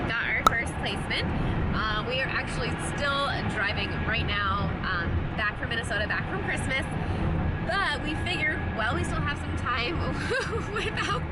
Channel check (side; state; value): both; identical; correlation 1.00